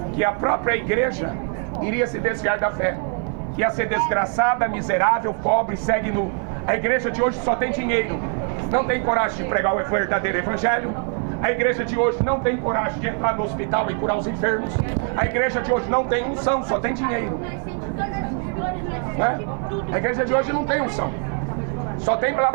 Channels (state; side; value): quieter; left; 39.4 dB